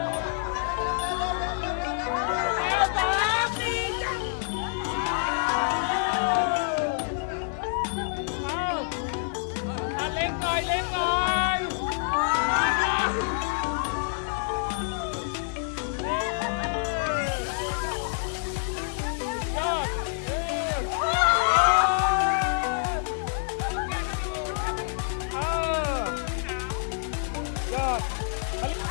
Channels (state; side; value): silent; right; 60 dB below the other